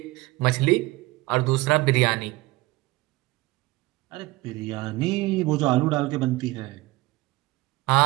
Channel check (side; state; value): left; quieter; 20.5 dB